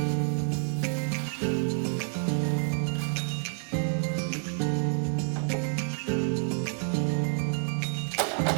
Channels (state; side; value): silent; left; 59 dB below the other